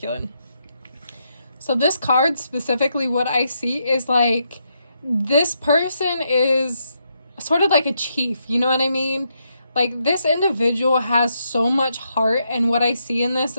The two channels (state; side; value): inverted; both; correlation -0.79